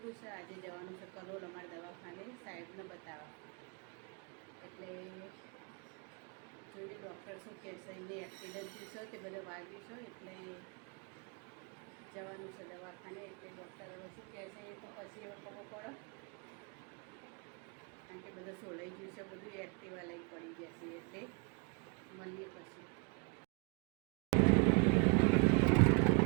છે. આજે જવાનું છે કલોલ અમારા દવાખાને સાહેબને બતાવવા. એટલે જોઈએ ડૉક્ટર શું કહેશે. એમને એક્સિડન્ટ થયું છે, તે બધા વાગ્યું છે, એટલે જવાનું છે દવાખાને. એટલે ડૉક્ટર હવે શું કહેશે એ તો પછી એવો ખબર પડે, કારણ કે બધું સોલાઈ ગયું છે, બધું એક્ટિવા લઈ પડી જશે. એટલે મળીએ પછી.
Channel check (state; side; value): quieter; left; 33.0 dB